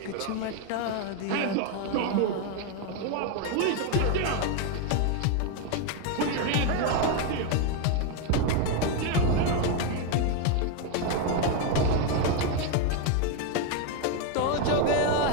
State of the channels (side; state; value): both; different; correlation 0.01